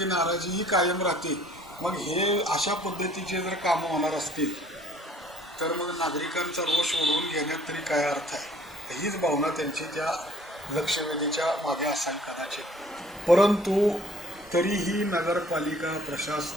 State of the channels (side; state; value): both; normal; correlation 0.56